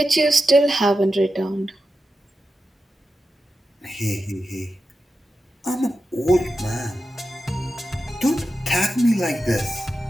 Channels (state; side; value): normal; both; correlation 0.91